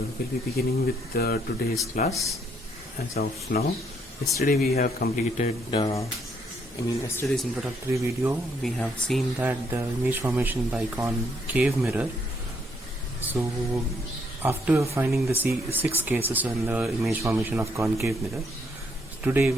be beginning with today's class. As of now, yesterday we have completed yesterday's introductory video. We have seen that the image formation by concave mirror. So after finding the six cases in the image formation of concave mirror, today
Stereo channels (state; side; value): normal; both; correlation 0.71